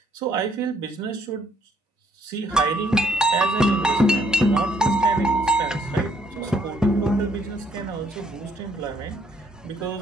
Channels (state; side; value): normal; both; correlation 0.68